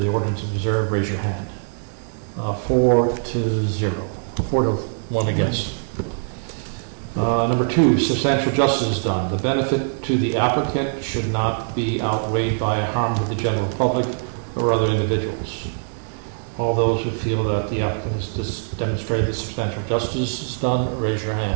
ordinance is observed, raise your hand. 4-0. 4-1 against. Number two, substantial justice is done. The benefit to the applicant should not be outweighed by a harm to the general public or other individuals. All those who feel that the applicant has demonstrated that substantial justice is done, raise your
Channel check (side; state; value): left; silent; digital silence